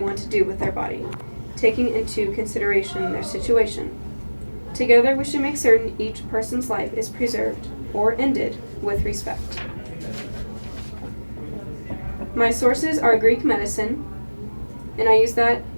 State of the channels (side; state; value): both; inverted; correlation -1.00